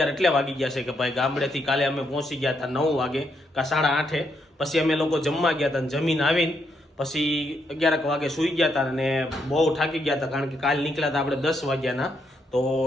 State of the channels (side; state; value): both; normal; correlation 0.77